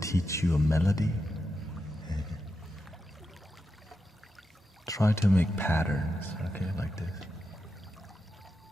you a melody? Try to make patterns, okay, like this.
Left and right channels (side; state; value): both; normal; correlation 0.87